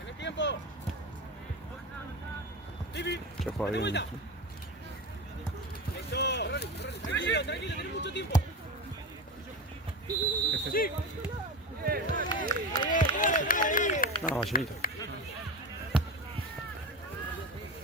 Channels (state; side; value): normal; both; correlation 0.23